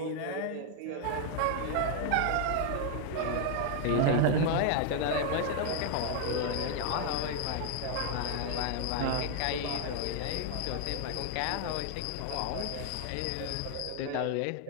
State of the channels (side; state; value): both; different; correlation 0.00